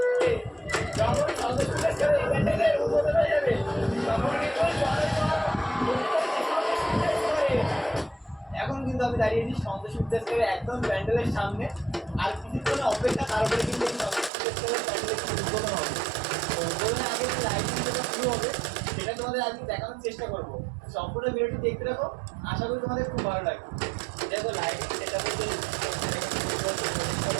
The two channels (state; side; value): drops out; left; at 14.3 s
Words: এখন কিন্তু আমি দাঁড়িয়েছি সন্তোষ বিদ্যাসাগরের একদম প্যান্ডেলের সামনে। আর কিছুক্ষণ অপেক্ষা, তারপরে কিন্তু এই সন্তোষ বিদ্যাসাগরের প্যান্ডেলের উদ্বোধন হবে। তো উদ্বোধনের আগে যে লাইটিং যেটা শুরু হবে সেটা তোমাদের আজকে দেখানোর চেষ্টা করবো। সম্পূর্ণ ভিডিওটি দেখতে থাকো, আশা করি তোমাদের খুব ভালো লাগবে। দেখো লাইটিং সেটা বলতে